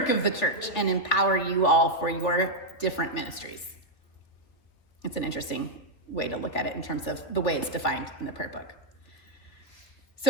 of the church and empower you all for your different ministries. It's an interesting way to look at it in terms of the way it's defined in the prayer book.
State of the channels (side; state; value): right; late; 3.4 ms